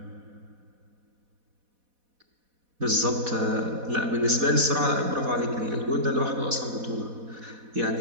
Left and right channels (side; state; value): left; late; 4.1 ms